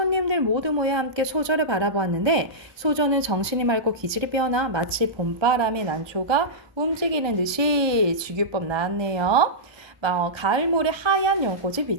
모두 모여 함께 소저를 바라보았는데, 소저는 정신이 맑고 기질이 빼어나 마치 봄바람의 난초가 움직이는 듯이 주규법 나왔네요. 가을모래 하얀 연꽃이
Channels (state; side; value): late; left; 1.2 ms